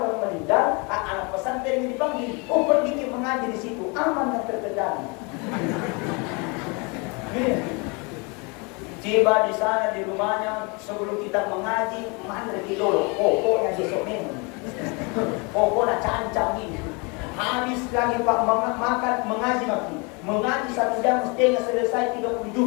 meninggal, anak pesantren yang dipanggil, pergi ke mengaji di situ, aman dan terkendali. Tiba di sana di rumahnya sebelum kita mengaji, mana dulu, pokoknya besok memang, pokoknya cancang ini. Habis lagi Pak makan mengaji makin. Mengaji 1 jam setengah selesai 30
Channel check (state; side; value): quieter; right; 30.6 dB